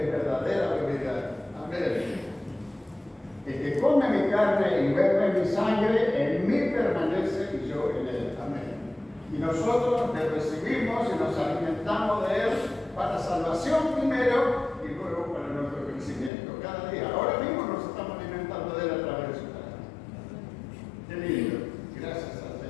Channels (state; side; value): drops out; right; at 16.3 s